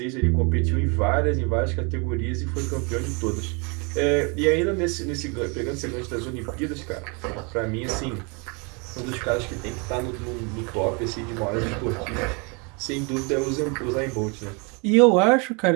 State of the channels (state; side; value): quieter; left; 32.3 dB